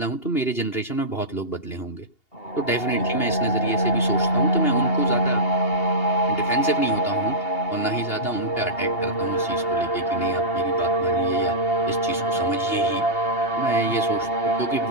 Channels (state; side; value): late; right; 2.8 ms